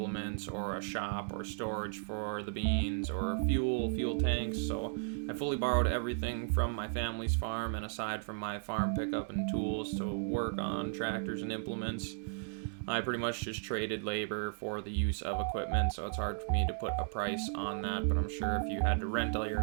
or a shop or storage for the beans or fuel tanks. So I fully borrowed everything from my family's farm, and aside from my farm pickup and tools to work on tractors and implements, I pretty much just traded labor for the use of equipment, so it's hard for me to put a price on that, but I'm sure if you had to rent all your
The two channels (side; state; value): left; silent; digital silence